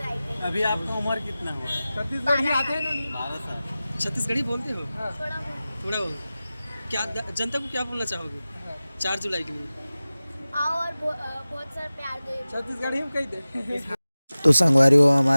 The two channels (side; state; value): both; inverted; correlation -0.97